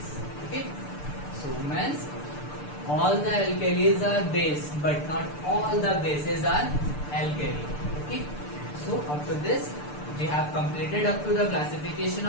Okay, so means all the alkalis are base, but not all the bases are alkali. Okay, so up to this we have completed up to the classification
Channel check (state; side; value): late; right; 6.8 ms